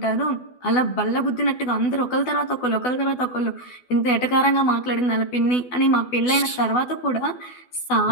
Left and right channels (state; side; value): late; right; 12 ms